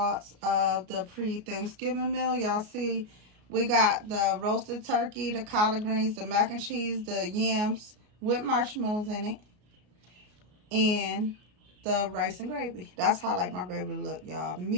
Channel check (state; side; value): late; left; 33 ms